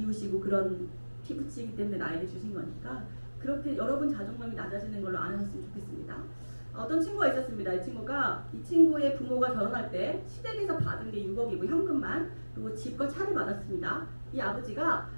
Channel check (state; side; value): inverted; both; correlation -1.00